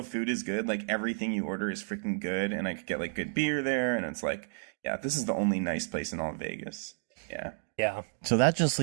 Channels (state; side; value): silent; left; digital silence